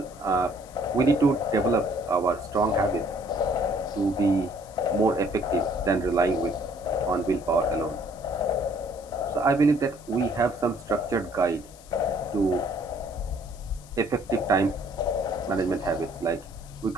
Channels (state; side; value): noise; left; hiss, 23 dB below the sound